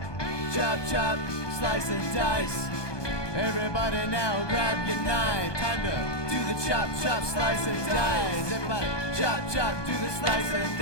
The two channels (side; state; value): right; late; 1.2 ms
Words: Chop, chop. Slice and dice. Everybody now grab your knife. Time to do the chop, chop, slice and dice. Everybody chop, chop, do the slice and